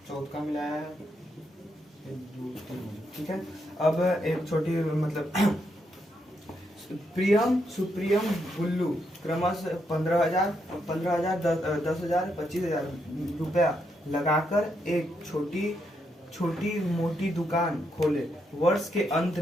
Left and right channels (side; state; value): both; normal; correlation 0.79